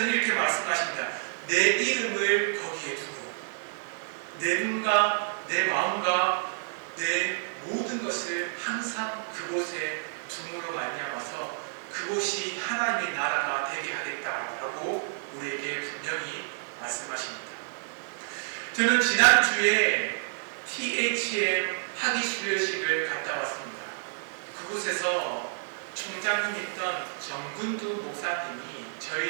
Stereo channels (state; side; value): silent; left; digital silence